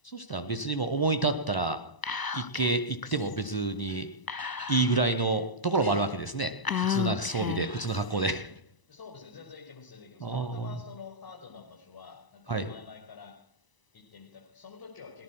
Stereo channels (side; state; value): right; late; 1.0 ms